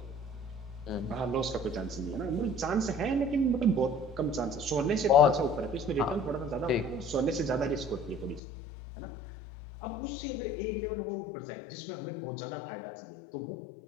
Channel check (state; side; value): drops out; right; at 8.4 s